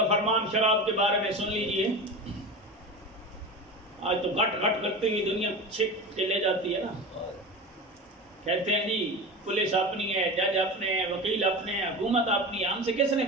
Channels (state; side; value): normal; both; correlation 0.28